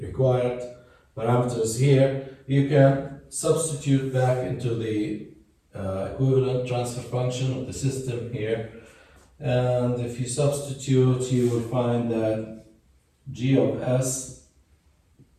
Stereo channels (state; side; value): identical; both; correlation 1.00